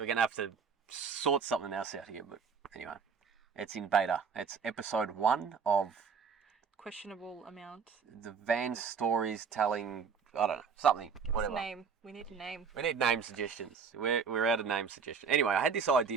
to have to sort something else out here, but anyway. It's in beta. It's episode 1 of Questionable amount. the van stories telling, I don't know, something, Give whatever. us a name. We need a name. We need name suggestions. We're out of name suggestions. Anyway, I had this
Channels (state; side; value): quieter; left; 6.0 dB